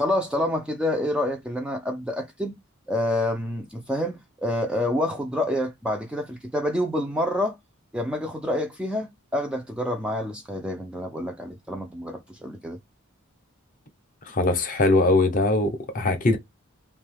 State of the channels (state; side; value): normal; both; correlation 0.56